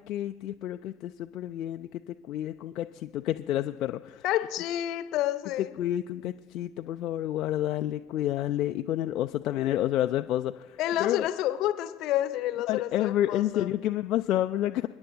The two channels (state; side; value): quieter; right; 12.5 dB